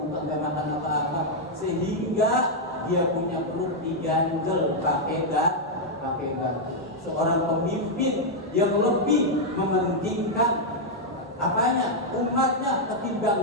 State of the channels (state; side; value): normal; both; correlation -0.02